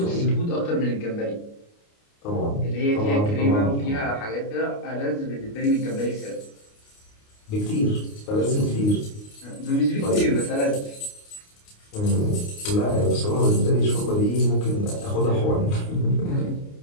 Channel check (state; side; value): late; right; 29 ms